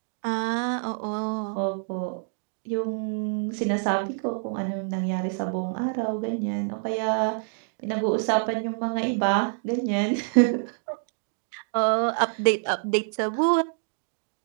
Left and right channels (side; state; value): left; silent; digital silence